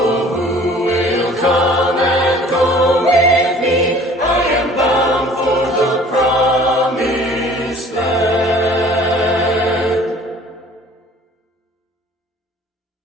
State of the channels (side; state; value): both; normal; correlation 0.50